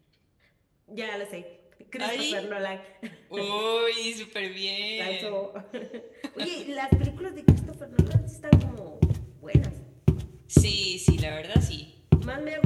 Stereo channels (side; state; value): both; identical; correlation 1.00